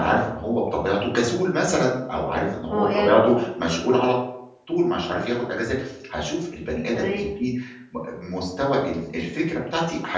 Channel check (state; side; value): identical; both; correlation 1.00